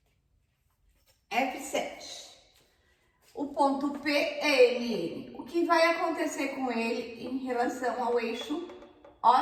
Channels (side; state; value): both; identical; correlation 1.00